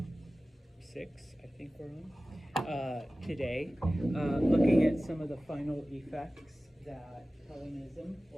6, I think we're on, today, looking at some of the final effects that Hellenism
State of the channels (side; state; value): both; normal; correlation 0.97